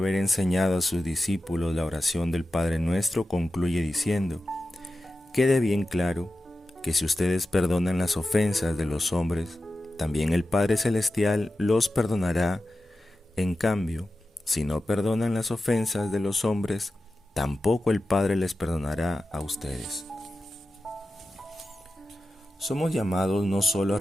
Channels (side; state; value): both; normal; correlation 0.92